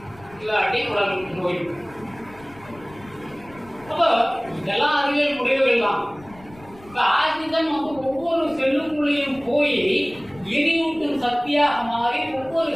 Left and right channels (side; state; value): left; noise; rumble, 23 dB below the sound